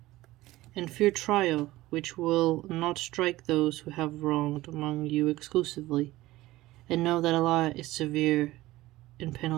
And fear trial, which will not strike those who have wronged among you exclusively, and know that Allah is severe in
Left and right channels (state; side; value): quieter; left; 17.5 dB